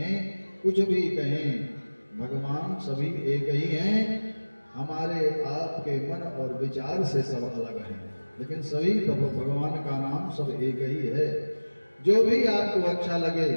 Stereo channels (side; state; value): both; inverted; correlation -1.00